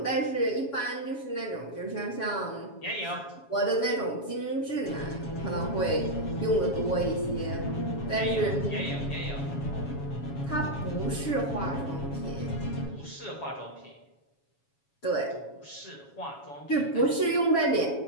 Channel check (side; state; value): right; late; 7.2 ms